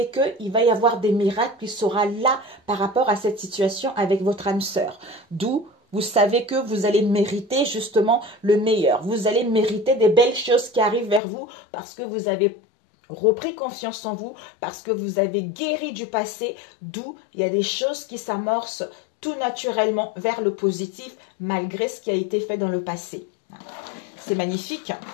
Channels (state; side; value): drops out; right; at 11.2 s